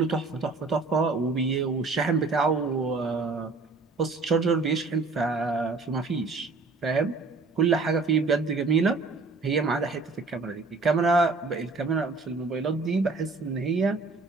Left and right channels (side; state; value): left; quieter; 3.9 dB